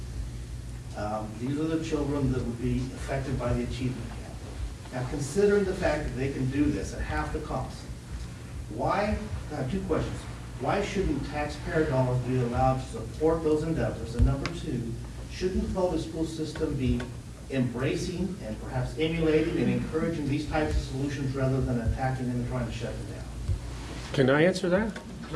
These are the children that would be affected by the achievement gap. Now, considering the fact that they can do this at half the cost, I have two questions. Why shouldn't taxpayer dollars be allowed to support those endeavors? And number two, shouldn't the public school system be embracing and perhaps emulating and encouraging these types of solutions rather than attacking them and trying to shut them down? Can I answer that?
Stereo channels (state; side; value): identical; both; correlation 1.00